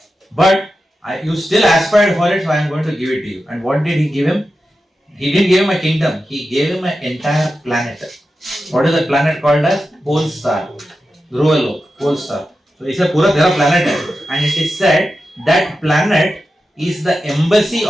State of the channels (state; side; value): normal; both; correlation 0.91